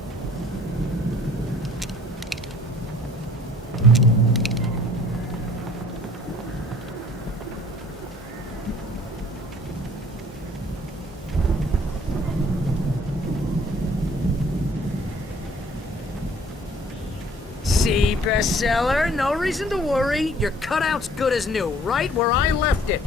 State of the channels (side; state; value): both; normal; correlation 0.55